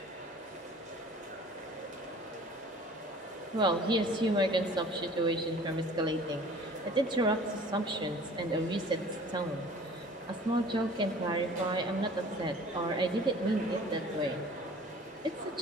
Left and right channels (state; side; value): normal; both; correlation 0.48